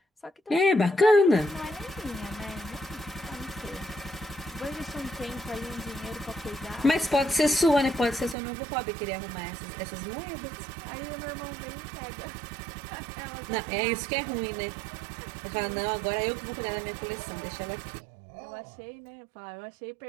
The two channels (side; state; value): left; drops out; at 8.3 s